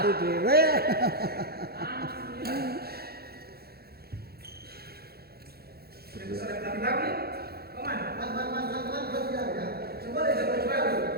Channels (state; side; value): late; left; 0.46 ms